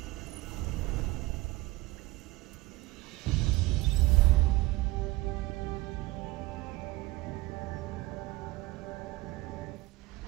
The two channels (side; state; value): left; quieter; 20.3 dB